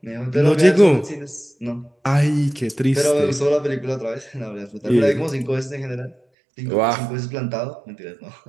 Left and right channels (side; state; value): left; drops out; at 6.2 s